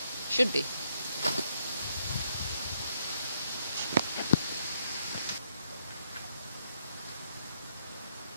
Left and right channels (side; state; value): both; inverted; correlation -0.73